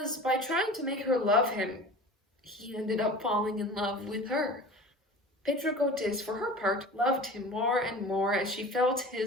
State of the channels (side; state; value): both; normal; correlation 0.38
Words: by trying to make her love him, he ended up falling in love with her. Petrocotes, for her part, loved him more and more as she felt